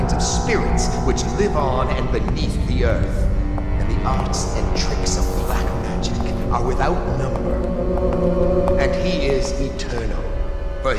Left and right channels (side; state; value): both; identical; correlation 1.00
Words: of spirits which live on and beneath the earth. And the arts and tricks of black magic are without number. And he is eternal, for